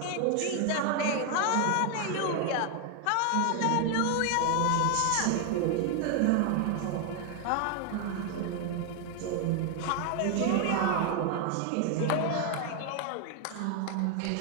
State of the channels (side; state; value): both; different; correlation 0.01